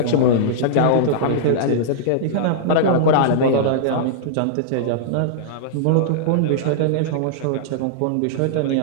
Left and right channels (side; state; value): both; different; correlation -0.02